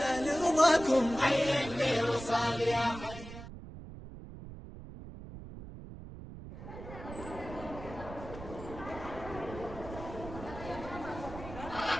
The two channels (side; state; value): right; noise; rumble, 12 dB below the sound